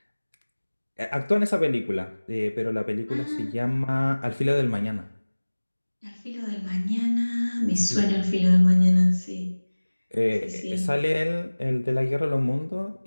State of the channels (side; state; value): both; inverted; correlation -1.00